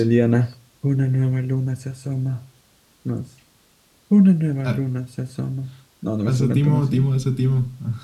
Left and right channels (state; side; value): identical; both; correlation 1.00